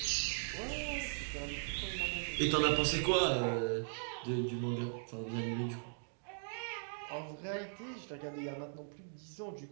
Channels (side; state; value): left; silent; digital silence